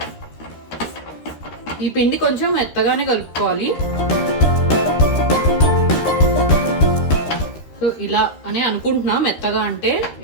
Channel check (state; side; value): late; right; 13 ms